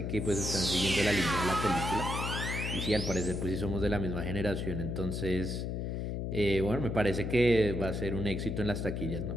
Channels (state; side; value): noise; left; hum, 2 dB below the sound